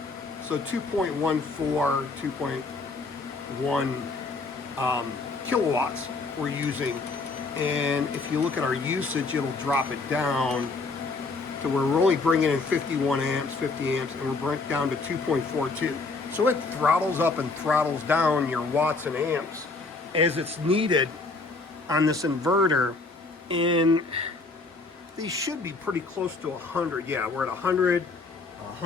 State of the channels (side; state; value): right; quieter; 3.8 dB